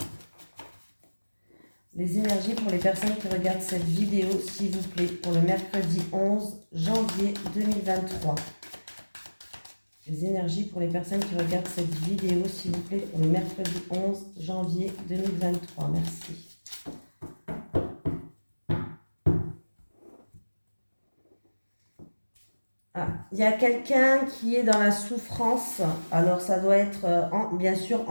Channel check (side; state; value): both; inverted; correlation -1.00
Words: Les énergies pour les personnes qui regardent cette vidéo, s'il vous plaît, pour le mercredi 11 janvier 2023. Les énergies pour les personnes qui regardent cette vidéo, s'il vous plaît, pour le mercredi 11 janvier 2023. Merci. Ah, il y a quelqu'un qui est dans la souffrance. Alors, ça doit être, bien sûr,